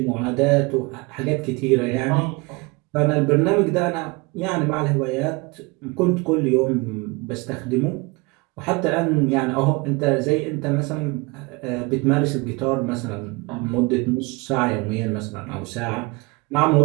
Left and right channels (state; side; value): quieter; left; 26.2 dB